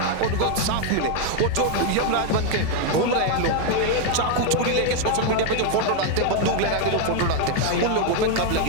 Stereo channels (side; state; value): both; different; correlation 0.01